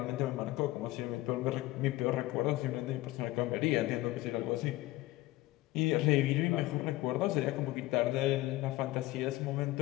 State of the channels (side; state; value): right; quieter; 18.1 dB